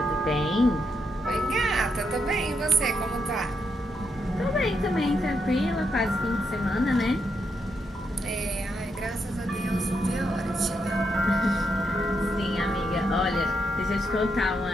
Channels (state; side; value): normal; both; correlation 0.80